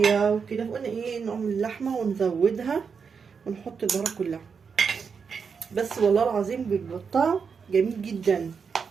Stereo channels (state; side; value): quieter; left; 5.9 dB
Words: وكده فقلنا ايه نعمل اللحمه ونزودها ونحط البهارات كلها. بس والله العظيم بيبقى الطعم جميل جدا